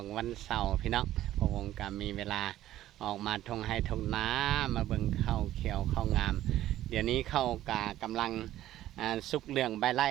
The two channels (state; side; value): quieter; left; 13.6 dB